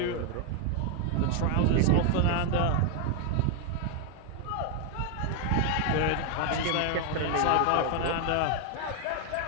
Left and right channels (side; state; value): both; different; correlation 0.00